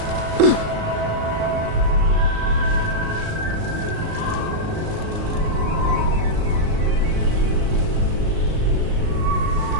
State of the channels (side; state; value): left; late; 37 ms